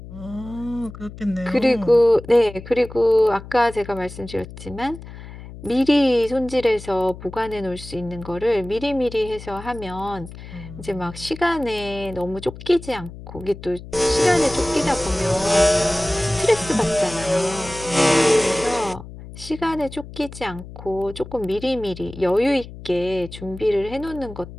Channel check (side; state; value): left; noise; hum, 14 dB below the sound